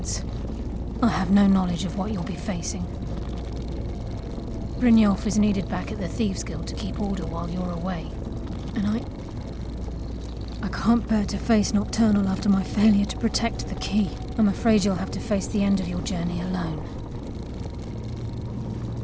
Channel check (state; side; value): identical; both; correlation 1.00